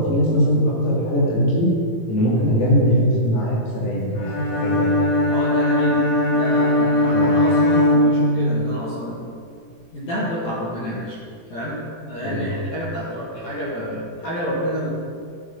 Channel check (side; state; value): right; late; 18 ms